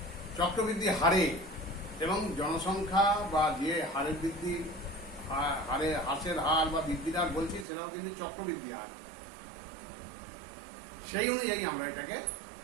চক্রবৃদ্ধি হারে এবং জনসংখ্যা বা যে হারের বৃদ্ধি, হারে হ্রাসের হার বা বৃদ্ধির হার বলছি, সেটাও কিন্তু চক্রবৃদ্ধি হার। সেই অনুযায়ী আমরা এটাকে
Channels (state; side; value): drops out; left; at 7.7 s